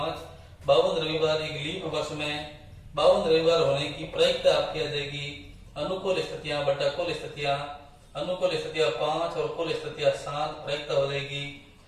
52 रविवार एक लीप वर्ष में 52 रविवार होने की प्रायिकता आपकी आ जाएगी। अनुकूल स्थितियां बटा कुल स्थितियां, अनुकूल स्थितियां 5 और कुल स्थितियां 7, प्रायिकता हो जाएगी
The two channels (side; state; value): both; identical; correlation 1.00